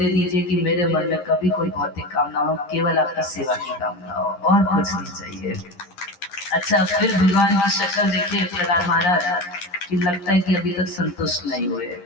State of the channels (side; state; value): right; late; 11 ms